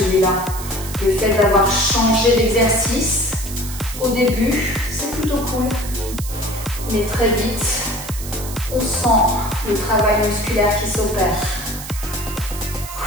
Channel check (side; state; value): right; noise; hiss, 11 dB below the sound